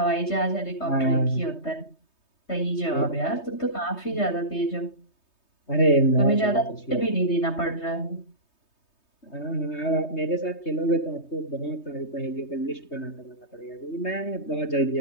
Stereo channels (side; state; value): right; late; 3.2 ms